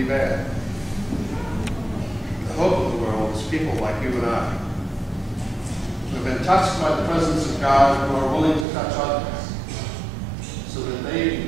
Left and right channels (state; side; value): drops out; left; at 8.7 s